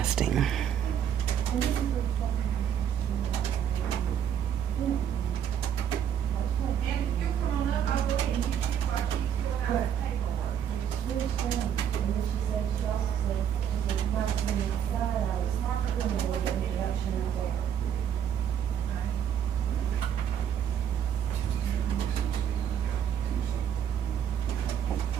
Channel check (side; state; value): left; quieter; 9.0 dB